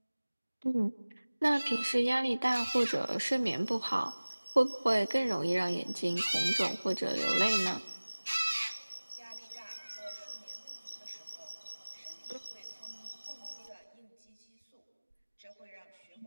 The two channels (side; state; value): both; inverted; correlation -1.00